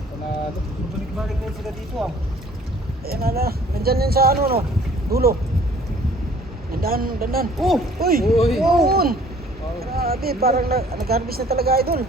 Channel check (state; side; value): normal; both; correlation 0.54